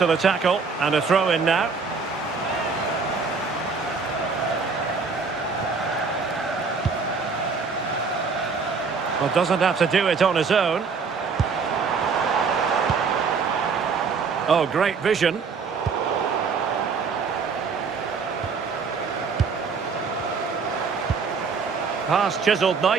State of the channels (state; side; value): quieter; left; 5.1 dB